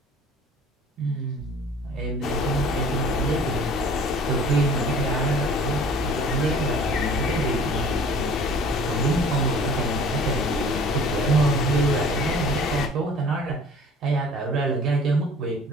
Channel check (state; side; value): normal; both; correlation 0.49